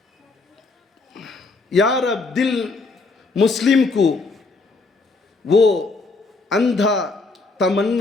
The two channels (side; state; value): right; quieter; 3.8 dB